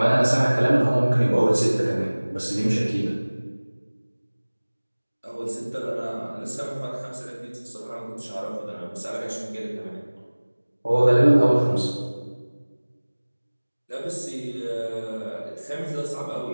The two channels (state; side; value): inverted; both; correlation -1.00